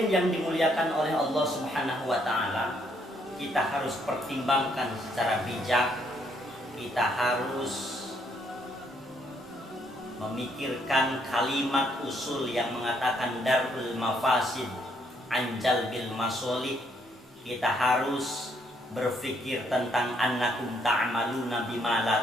yang dimuliakan oleh Allah Subhanahu wa Ta'ala, kita harus pertimbangkan secara bijak. Kita harus memikirkan kalimat usul yang mengatakan darul mafasid anjal bil masolih. Kita harus berpikir tentang annakum ta'maluna bima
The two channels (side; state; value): both; normal; correlation 0.71